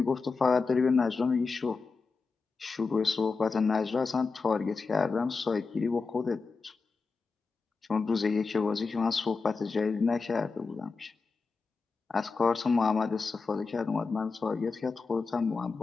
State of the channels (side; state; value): right; quieter; 4.5 dB